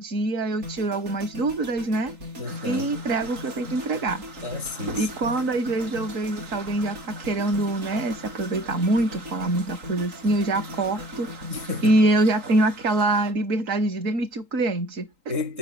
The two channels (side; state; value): left; late; 3.8 ms